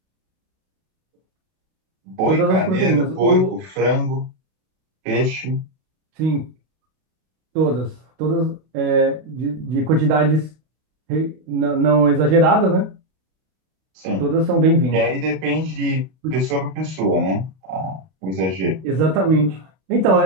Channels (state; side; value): late; left; 32 ms